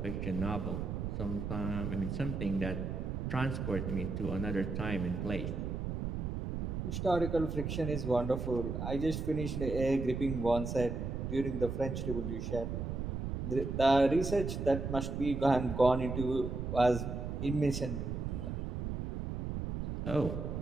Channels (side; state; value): right; noise; rumble, 3 dB below the sound